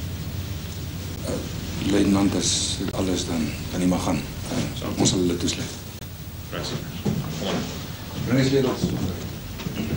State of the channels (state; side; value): identical; both; correlation 1.00